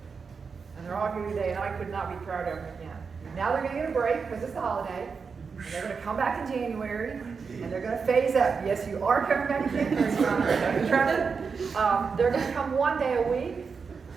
And they're all here today, and I could not be prouder of them again. Now they're going to get a break because it's the holiday. And they're going to come back in January, and they're going to phase up. Yes, you are coming back in January. They're going to come 1 day a week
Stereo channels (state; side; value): quieter; left; 5.4 dB